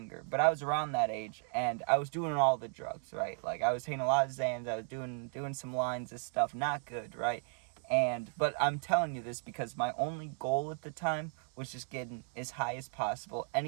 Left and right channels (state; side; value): silent; left; 54 dB below the other